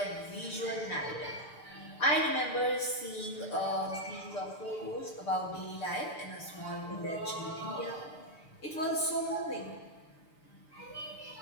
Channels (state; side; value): late; right; 6.8 ms